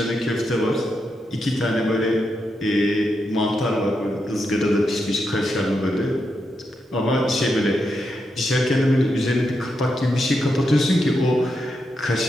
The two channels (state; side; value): normal; both; correlation 0.84